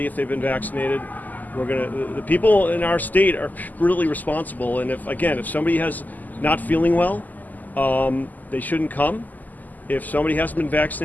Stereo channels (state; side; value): late; right; 0.082 ms